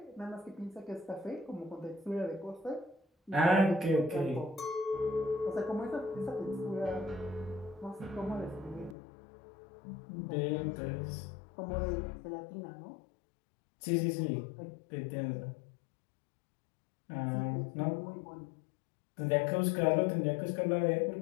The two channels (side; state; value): right; drops out; at 9.0 s